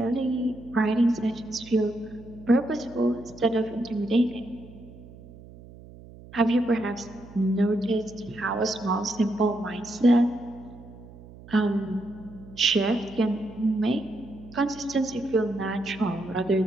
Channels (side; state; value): right; noise; hum, 19 dB below the sound